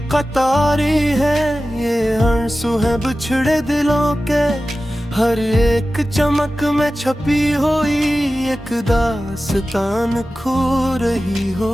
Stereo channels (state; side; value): normal; both; correlation 0.95